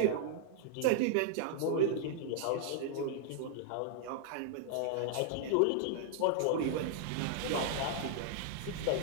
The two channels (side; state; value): both; different; correlation -0.01